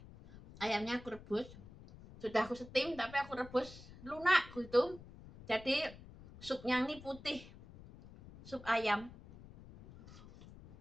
Ayamnya aku rebus. Sudah aku steam tapi aku rebus lunak gitu. Jadi supnya ini putih. Sup ayam.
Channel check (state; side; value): noise; left; rumble, 18 dB below the sound